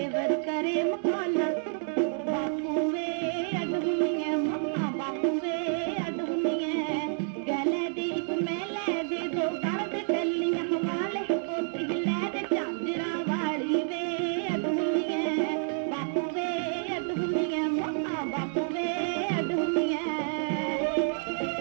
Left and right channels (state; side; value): silent; left; digital silence